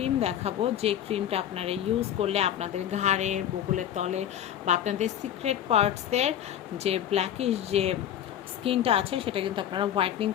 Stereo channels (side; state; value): right; quieter; 10.6 dB